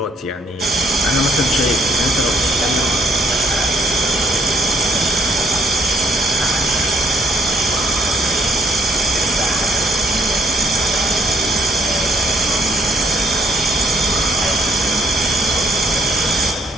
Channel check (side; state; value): both; normal; correlation 0.67